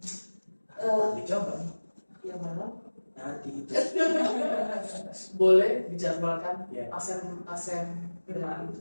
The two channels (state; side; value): inverted; both; correlation -1.00